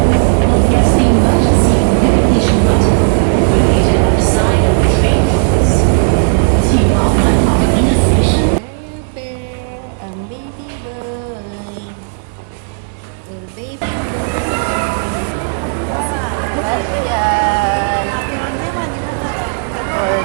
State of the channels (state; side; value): silent; left; digital silence